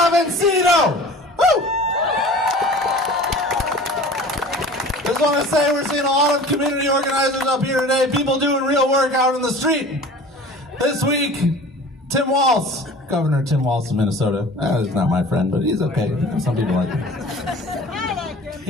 vencido. Woo! Just want to say we're seeing a lot of community organizers up here today, people doing real work out in the street. This week, Tim Walz, Governor Tim Walz of Minnesota, he's not my friend, but he's okay. Some people like him.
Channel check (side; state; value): both; normal; correlation 0.42